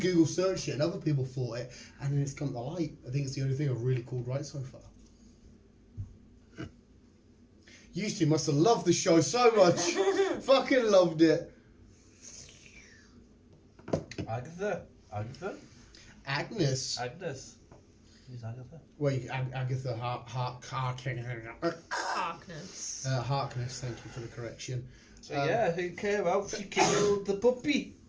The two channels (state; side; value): identical; both; correlation 1.00